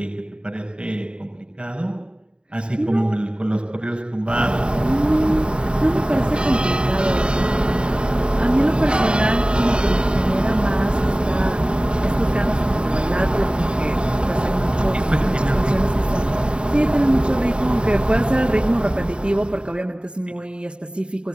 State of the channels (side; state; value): left; late; 0.052 ms